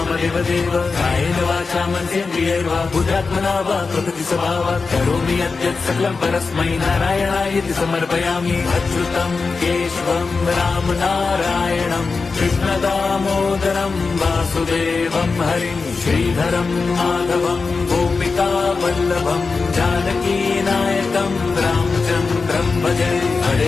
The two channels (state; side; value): quieter; right; 4.4 dB